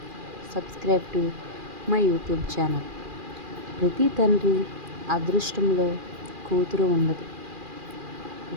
subscribe to my YouTube channel. ప్రతి తండ్రి అదృష్టంలో కూతురు ఉండదు.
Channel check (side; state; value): left; late; 2.4 ms